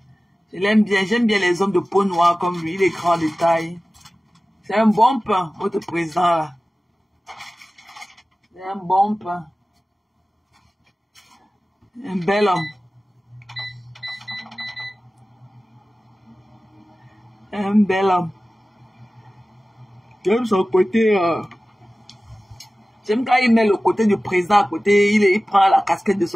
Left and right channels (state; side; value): normal; both; correlation 0.96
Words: Je l'aime bien. J'aime bien les hommes de peau noire comme lui. Il est grand de taille. C'est un bon pain, votre président, là. C'est un bon pain. Un bel homme. Un bel homme. J'aime son côté... J'aime quand il met le côté du président à côté. Il prend la casquette